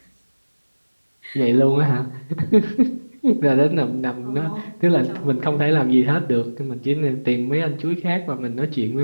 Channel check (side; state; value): both; inverted; correlation -1.00